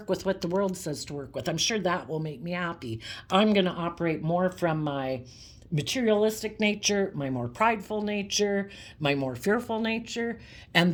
with what the world says to work with, I'm sure that will make me happy. I'm going to operate more from my materialistic nature, my more prideful nature, my more fearful nature,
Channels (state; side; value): identical; both; correlation 1.00